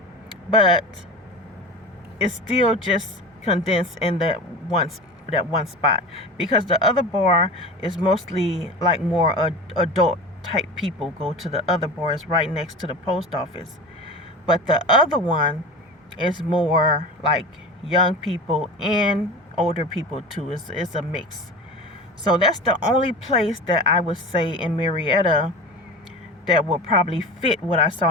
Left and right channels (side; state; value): both; normal; correlation 0.32